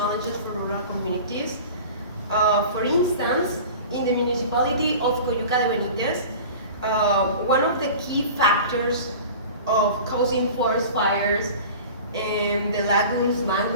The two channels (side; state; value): both; inverted; correlation -0.38